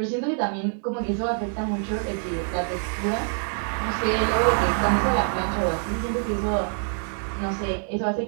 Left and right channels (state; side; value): silent; left; 59 dB below the other